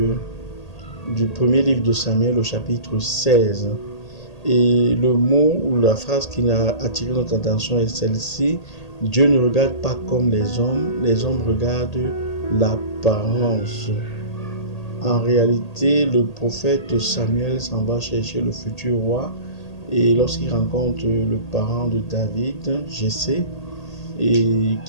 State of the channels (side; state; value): right; late; 1.8 ms